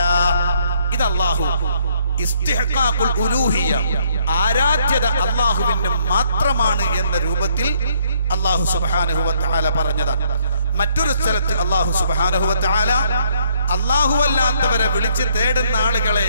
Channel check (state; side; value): inverted; both; correlation -0.68